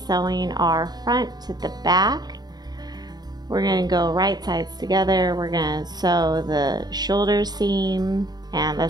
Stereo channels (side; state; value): left; late; 0.20 ms